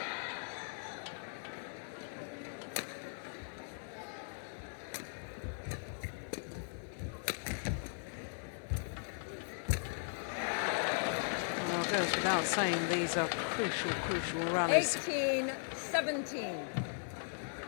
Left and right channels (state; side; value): silent; right; digital silence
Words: Well, it goes without saying these are crucial rallies. 18, 17.